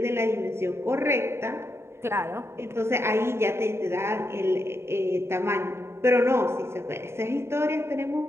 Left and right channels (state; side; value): late; left; 0.12 ms